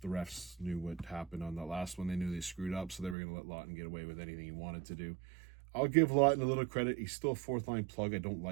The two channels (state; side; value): drops out; left; at 3.2 s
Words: refs knew what happened on that last one. They knew they screwed up, so they were going to let Lawton get away with anything he wanted to do. I'll give Lawton a little credit. He's still a fourth-line plug. I don't